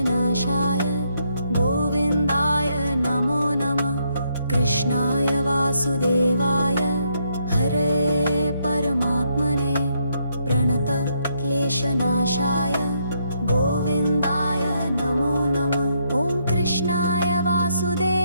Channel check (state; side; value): inverted; both; correlation -0.75